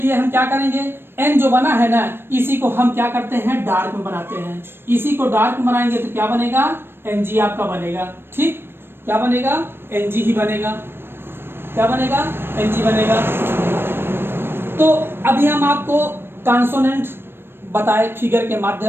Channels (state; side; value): late; left; 0.11 ms